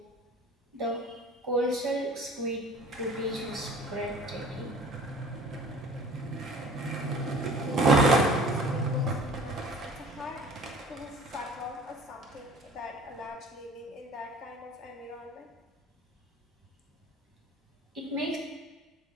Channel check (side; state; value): both; normal; correlation 0.46